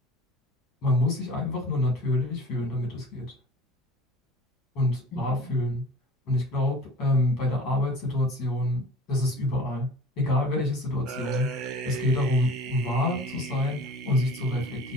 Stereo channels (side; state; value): both; normal; correlation 0.43